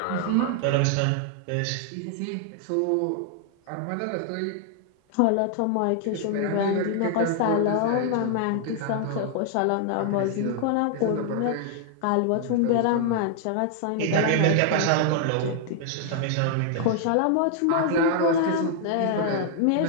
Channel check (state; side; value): different; both; correlation 0.00